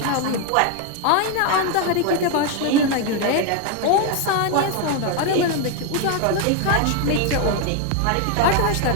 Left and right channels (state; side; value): different; both; correlation 0.01